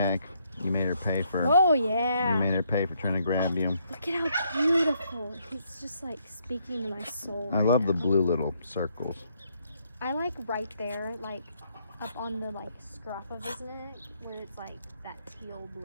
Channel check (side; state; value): both; inverted; correlation -0.73